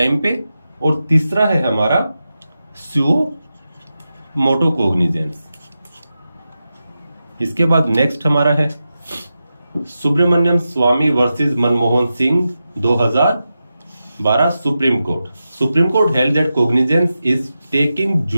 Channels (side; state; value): both; inverted; correlation -0.91